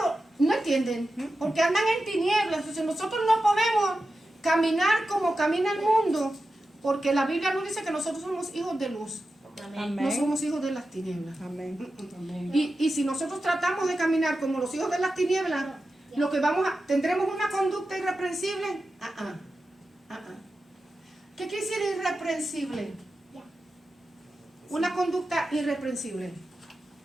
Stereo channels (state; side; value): normal; both; correlation 0.92